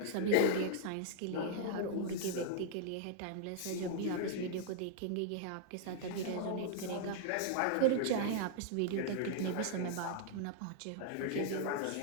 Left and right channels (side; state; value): both; different; correlation -0.01